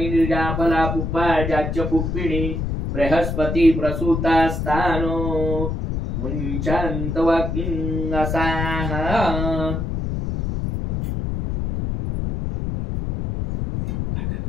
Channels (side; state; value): left; noise; rumble, 2 dB below the sound